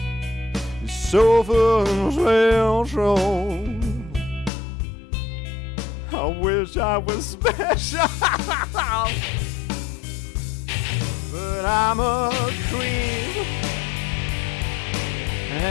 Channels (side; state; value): right; drops out; at 4.5 s